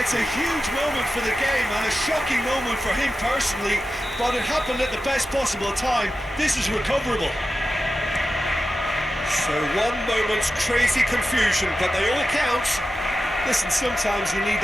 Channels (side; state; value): both; normal; correlation 0.92